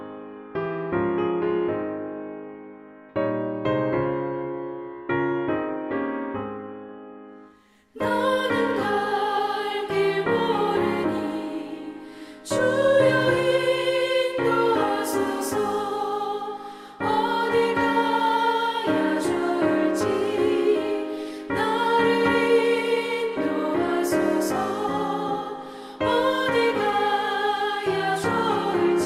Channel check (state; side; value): identical; both; correlation 1.00